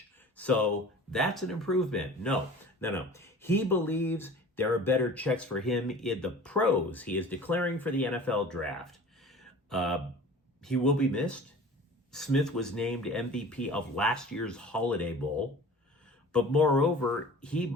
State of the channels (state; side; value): normal; both; correlation 0.42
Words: So that's an improvement. No. He believes there are better checks for him in the pros. He is declaring for the NFL draft. He will be missed. Smith was named MVP of last year's Holiday Bowl. But moreover, he